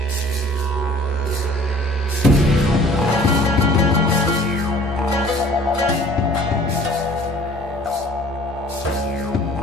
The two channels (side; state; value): both; normal; correlation 0.51